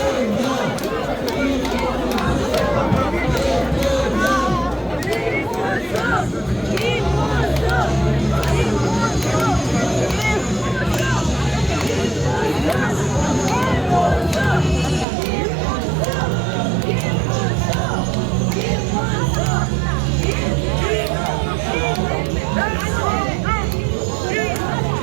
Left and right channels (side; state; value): left; drops out; at 15.1 s